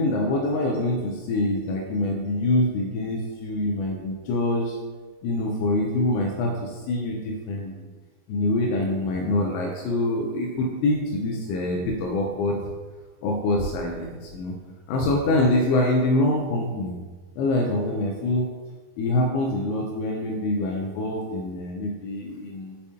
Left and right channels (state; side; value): late; right; 22 ms